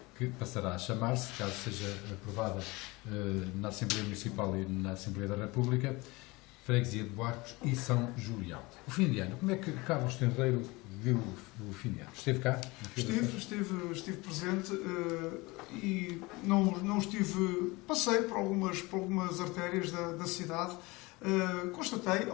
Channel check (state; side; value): quieter; right; 23.4 dB